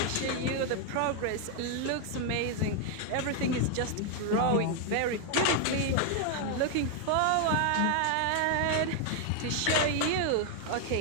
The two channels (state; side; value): different; both; correlation 0.00